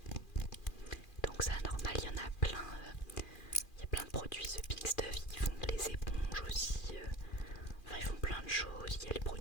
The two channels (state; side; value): late; right; 2.4 ms